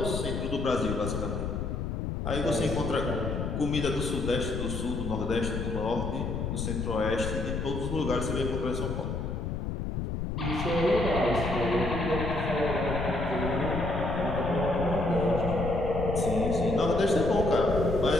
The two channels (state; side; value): noise; left; rumble, 3 dB below the sound